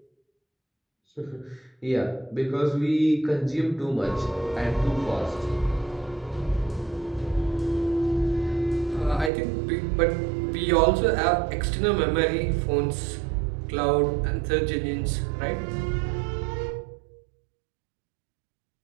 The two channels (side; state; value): left; drops out; at 9.3 s